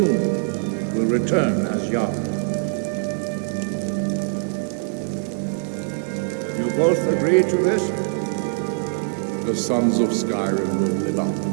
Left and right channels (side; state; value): left; silent; 64 dB below the other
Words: will return as Jarl. You both agree to this? The sons of Skyrim will live up to